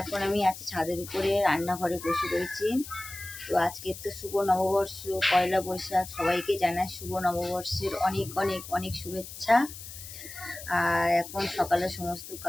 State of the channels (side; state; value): left; noise; hiss, 13 dB below the sound